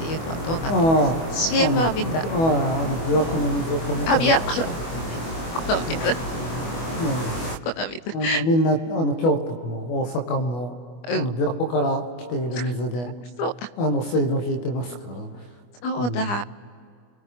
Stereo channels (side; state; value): right; late; 25 ms